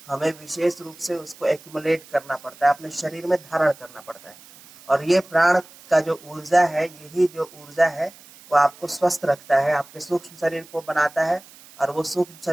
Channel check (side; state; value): right; noise; hiss, 22 dB below the sound